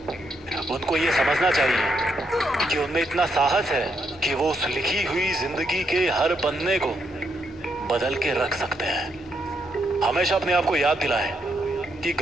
उनको ये समझना चाहिए कि उनमें इतना साहस है कि वो उस लिखी हुई जिंदगी के हर पन्ने को बदल के रख सकते हैं। हमेशा अपने आप को याद दिलाएं कि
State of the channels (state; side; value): normal; both; correlation 0.78